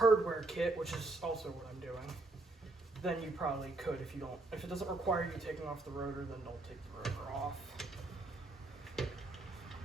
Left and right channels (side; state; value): left; quieter; 3.1 dB